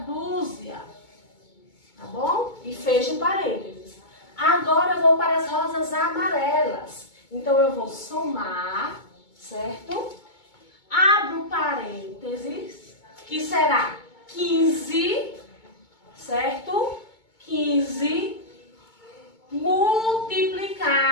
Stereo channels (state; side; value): late; right; 2.2 ms